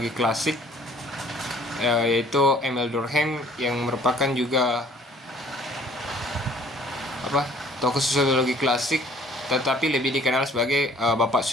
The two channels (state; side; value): normal; both; correlation 0.55